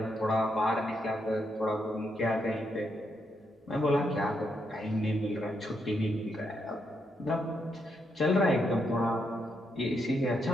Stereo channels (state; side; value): normal; both; correlation 0.79